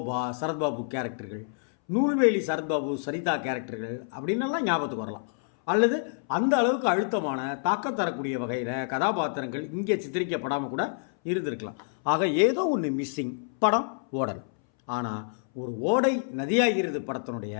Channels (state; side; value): silent; right; 60 dB below the other